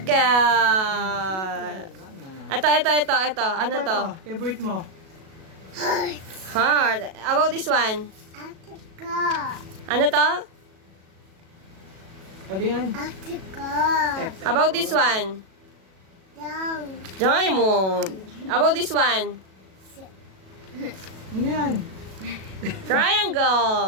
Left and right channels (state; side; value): late; left; 37 ms